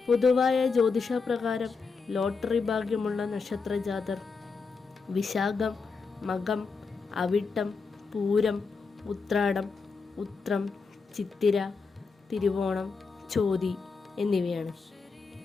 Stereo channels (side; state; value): right; quieter; 4.8 dB